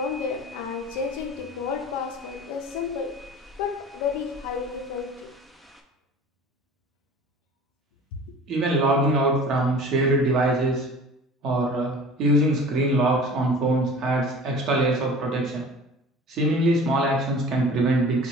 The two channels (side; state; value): both; normal; correlation 0.42